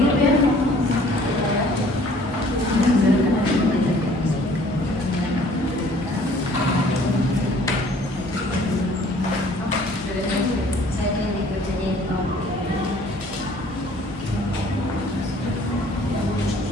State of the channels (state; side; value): normal; both; correlation 0.55